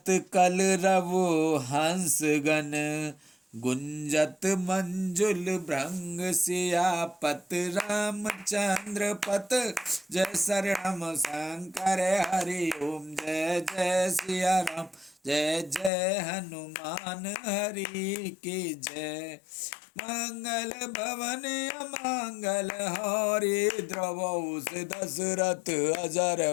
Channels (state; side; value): drops out; right; at 15.9 s